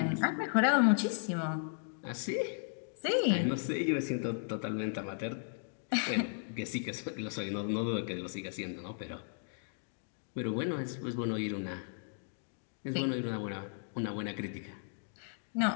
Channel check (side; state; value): right; silent; digital silence